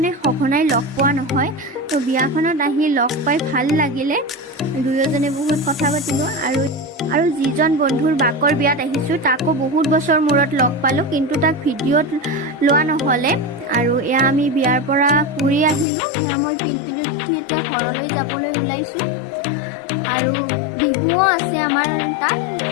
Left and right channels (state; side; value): drops out; right; at 15.9 s